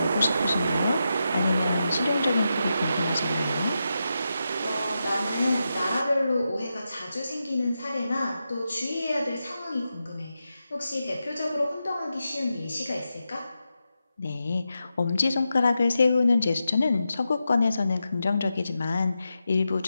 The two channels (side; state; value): both; inverted; correlation -0.88